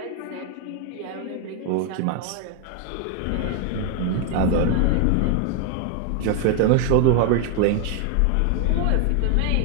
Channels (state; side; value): different; both; correlation 0.01